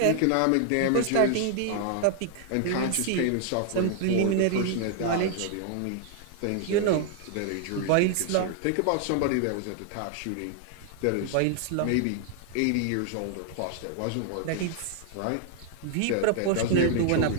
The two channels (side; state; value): both; different; correlation 0.00